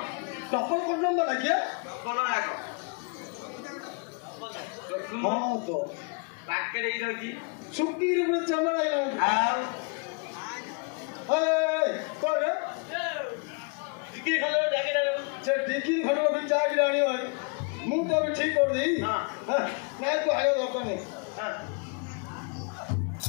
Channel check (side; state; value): right; quieter; 36.2 dB